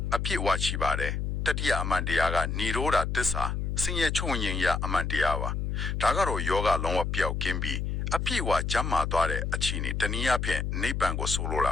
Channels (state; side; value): noise; left; hum, 1 dB below the sound